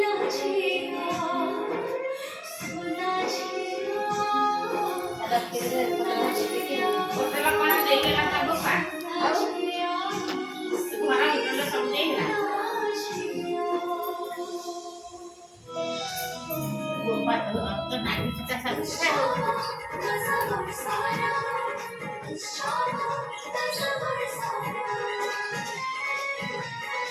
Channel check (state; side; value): identical; both; correlation 1.00